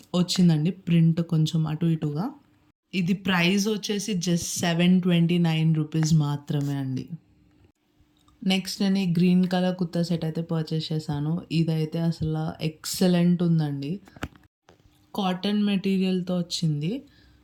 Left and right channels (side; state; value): both; identical; correlation 1.00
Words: వచ్చిందండి ప్రింట్ కొంచెం అటు ఇటుగా. ఇది ప్రైస్ వచ్చేసి జస్ట్ ₹729 మాత్రమే అండి. నెక్స్ట్ నేను ఈ గ్రీన్ కలర్ కుర్తా సెట్ అయితే పర్చేస్ చేశాను. ఇదైతే అసలు ఎక్సలెంట్ ఉందండి. కాటన్ మెటీరియల్‌తో వచ్చింది.